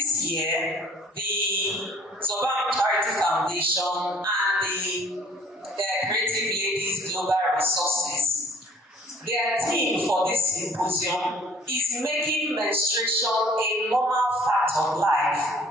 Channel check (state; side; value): normal; both; correlation 0.55